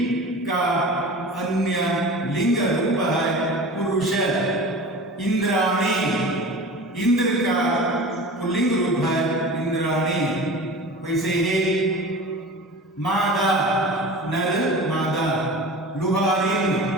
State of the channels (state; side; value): normal; both; correlation 0.35